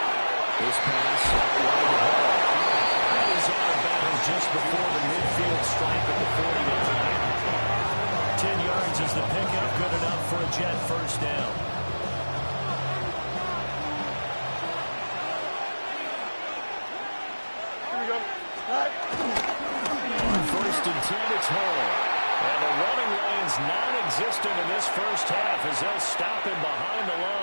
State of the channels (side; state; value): both; inverted; correlation -1.00